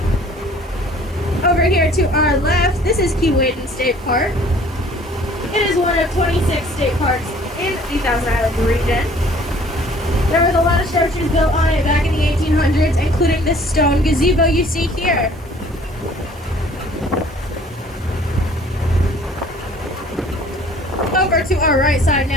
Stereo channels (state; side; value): normal; both; correlation 0.54